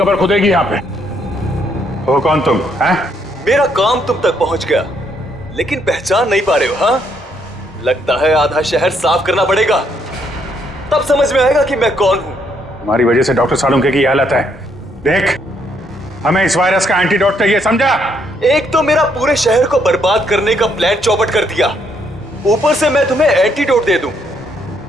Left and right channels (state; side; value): normal; both; correlation 0.72